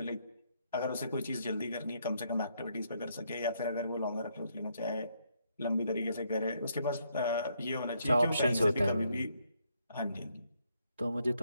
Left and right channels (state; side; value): inverted; both; correlation -0.74